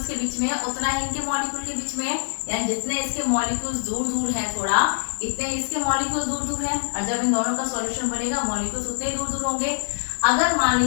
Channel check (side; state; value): right; silent; 56 dB below the other